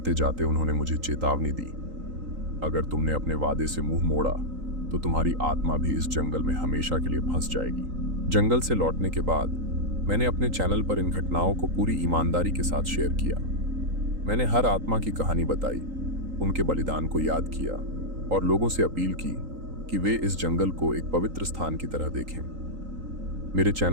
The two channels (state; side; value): late; left; 3.8 ms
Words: जाते उन्होंने मुझे चेतावनी दी, अगर तुमने अपने वादे से मुंह मोड़ा तो तुम्हारी आत्मा भी इस जंगल में हमेशा के लिए फंस जाएगी। जंगल से लौटने के बाद मैंने अपने चैनल पर इन घटनाओं को पूरी ईमानदारी के साथ शेयर किया। मैंने हर आत्मा की कहानी बताई, उनके बलिदान को याद किया और लोगों से अपील की कि वे इस जंगल को एक पवित्र स्थान की तरह देखें। मेरे